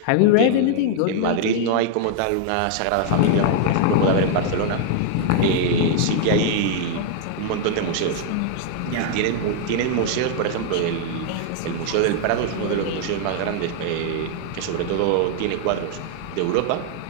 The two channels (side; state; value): both; different; correlation 0.00